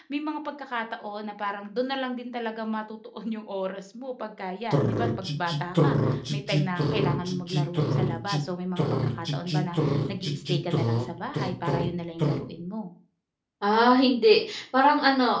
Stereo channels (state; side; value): identical; both; correlation 1.00